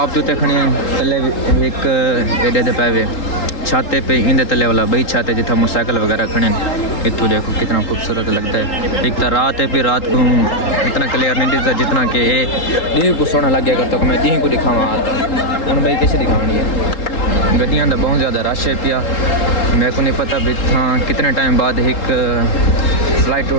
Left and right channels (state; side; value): late; right; 3.8 ms